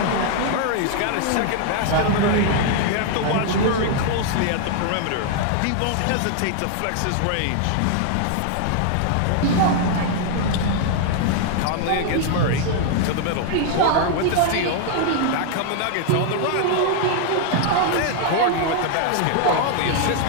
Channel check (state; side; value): different; both; correlation 0.00